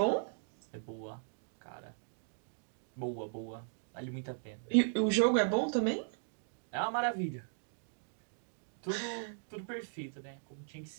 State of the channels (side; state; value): left; silent; digital silence